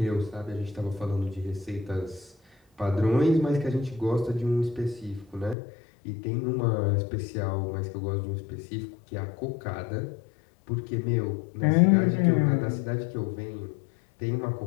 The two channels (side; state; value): right; drops out; at 5.6 s